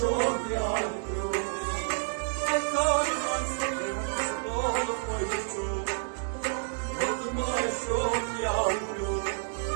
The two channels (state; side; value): silent; left; 58 dB below the other